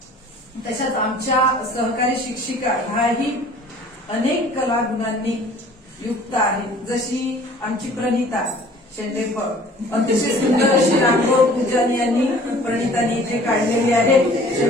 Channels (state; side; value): normal; both; correlation 0.50